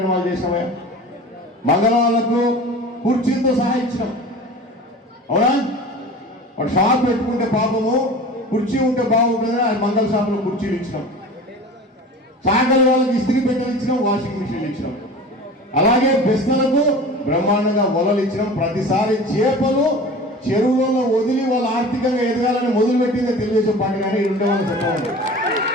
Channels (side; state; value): both; normal; correlation 0.37